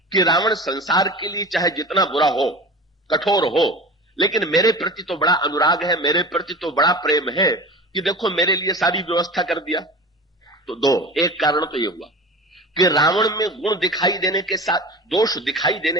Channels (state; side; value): normal; both; correlation 0.34